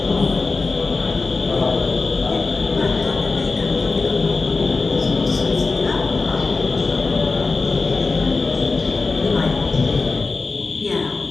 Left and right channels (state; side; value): quieter; right; 3.9 dB